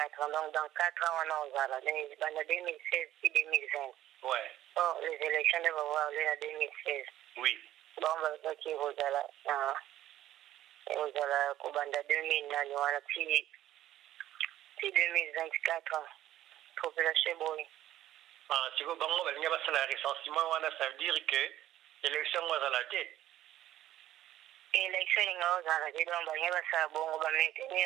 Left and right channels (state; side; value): quieter; left; 13.2 dB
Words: ans donc dans 4 ans wana ozala banda 2016 puis 2020 ouais. Oh, les élections devaient avoir lieu en 2016. Oui. Bon, bah, qui vous allez, Kobanda 2009, puis 2024, population boy. Ah, si vous avez un recensement, ça veut dire que l'élection va à la tête. L'élection va à la tête, donc, il va